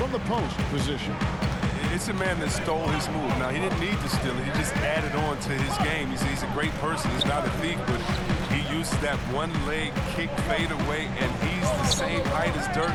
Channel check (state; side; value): identical; both; correlation 1.00